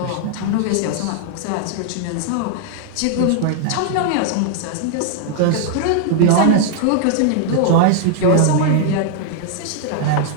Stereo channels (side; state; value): both; different; correlation 0.00